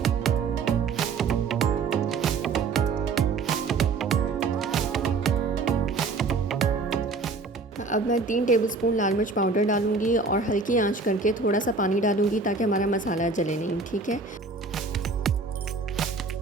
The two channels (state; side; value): quieter; left; 4.2 dB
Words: अब मैं 3 टेबलस्पून लाल मिर्च पाउडर डालूंगी और हल्की आंच करके थोड़ा सा पानी डालूंगी ताकि हमारा मसाला जले नहीं, ठीक है।